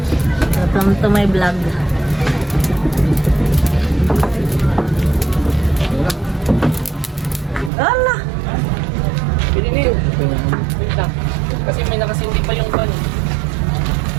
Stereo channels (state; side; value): drops out; left; at 7.7 s